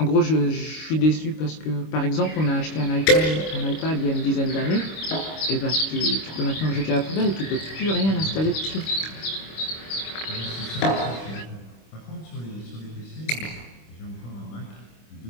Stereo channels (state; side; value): late; right; 26 ms